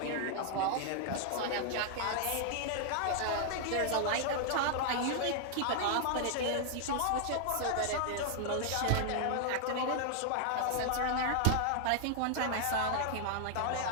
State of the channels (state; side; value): different; both; correlation 0.00